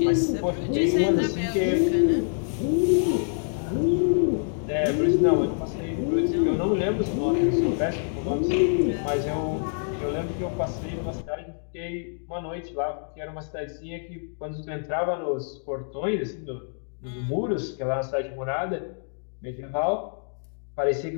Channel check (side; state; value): right; silent; digital silence